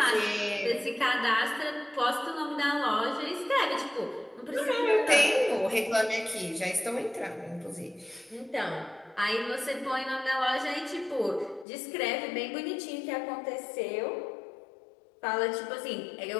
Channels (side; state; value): right; drops out; at 11.7 s